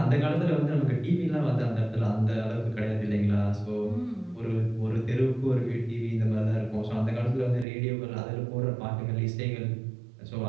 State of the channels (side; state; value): left; drops out; at 7.7 s